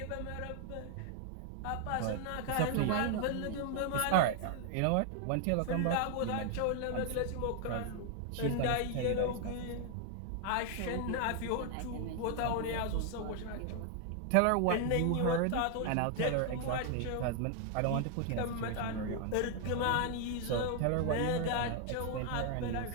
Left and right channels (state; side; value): different; both; correlation 0.00